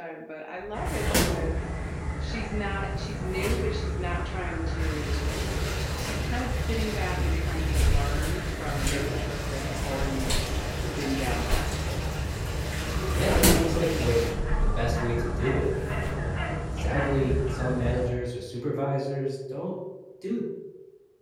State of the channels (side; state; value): both; identical; correlation 1.00